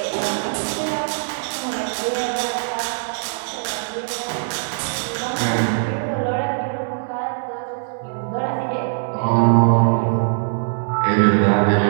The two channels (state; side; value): silent; left; digital silence